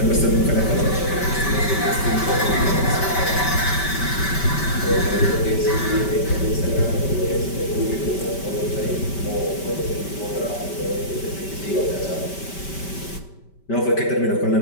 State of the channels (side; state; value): right; late; 5.2 ms